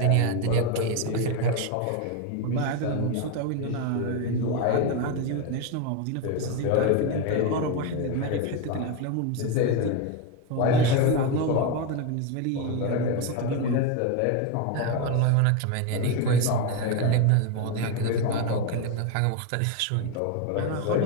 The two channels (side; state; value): both; different; correlation 0.02